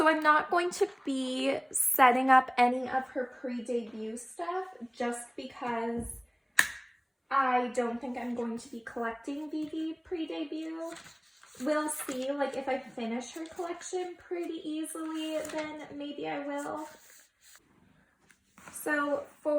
I'm not going to be setting up any of her pre-debut stuff just because I don't think I'm going to be collecting Vivi pre-debut. We'll see, like if I finish her collection pretty easily, then maybe I will. So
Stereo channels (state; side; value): identical; both; correlation 1.00